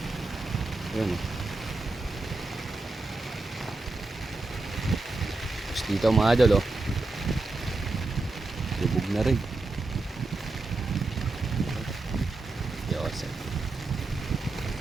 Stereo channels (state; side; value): quieter; left; 3.3 dB